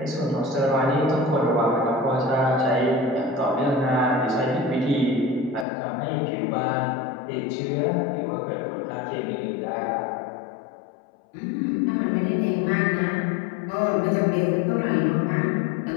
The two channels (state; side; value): drops out; right; at 5.7 s